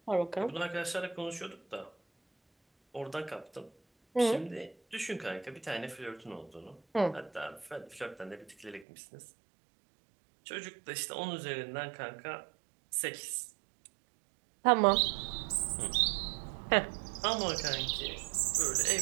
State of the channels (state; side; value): drops out; left; at 8.8 s